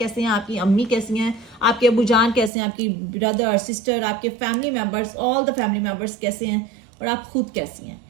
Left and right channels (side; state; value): left; drops out; at 2.5 s